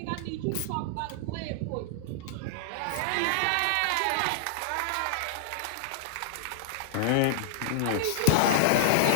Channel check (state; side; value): different; both; correlation -0.01